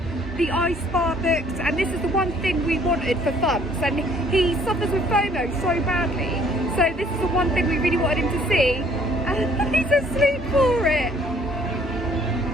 the ice bar books, and this is the one thing we wanted for Bumps, and he suffers with FOMO so badly, so this is the one thing we really wanted him to see, and he's asleep for it.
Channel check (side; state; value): both; normal; correlation 0.60